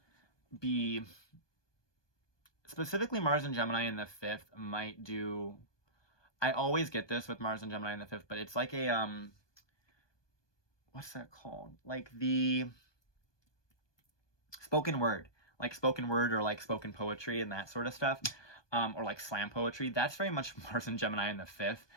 be, specifically Mars and Gemini in the fifth might do, I always get this with Mars and Gemini in the fifth, but it's like a, what's that called? Like the spoken word, or like spoken poetry and that sort of stuff, or like slam poetry. That's very much Mars and Gemini in the fifth,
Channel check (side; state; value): right; late; 1.2 ms